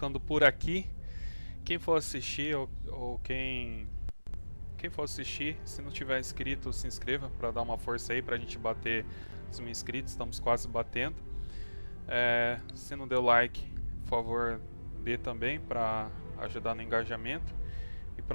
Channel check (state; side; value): inverted; both; correlation -1.00